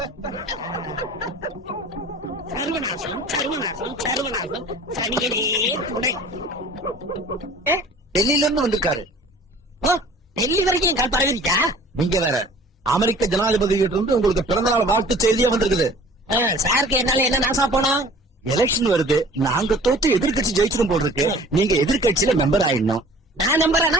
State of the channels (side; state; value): both; normal; correlation 0.48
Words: சர்வநாசம் சர்வநாசம் சர்வநாசம், சனியனே துணை. டெல்லியில இருந்து வந்திருக்காரு. ஓ, டெல்லி வரைக்கும் என் கால் பரவிருச்சா? நீங்க வேற அமெரிக்க ஜனாதிபதி கிட்ட இருந்து உங்களுக்கு பிறந்த நாள் வாழ்த்து செய்தியே வந்திருக்குது. சாருக்கு என்னால என்ன நாசா போனோம்? எலெக்ஷன் வருது, நாங்க தோத்து எதிர்கட்சி ஜெயிச்சிரும் போல் இருக்கு. நீங்க எதிர்கட்சியில மெம்பர் ஆயிடணும். நான் நம்புறேனா?